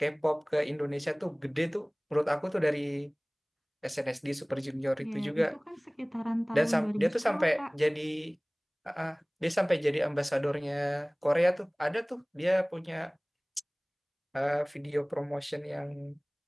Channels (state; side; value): identical; both; correlation 1.00